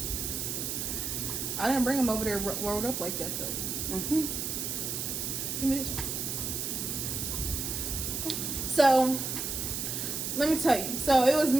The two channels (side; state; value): right; noise; hiss, 3 dB below the sound